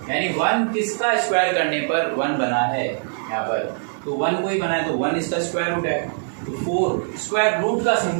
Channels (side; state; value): left; silent; 64 dB below the other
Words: यानी 1 किसका स्क्वायर करने पर 1 बना है यहाँ पर, तो 1 को ही बना है तो 1 इसका स्क्वायर रूट है। तो 4 स्क्वायर रूट का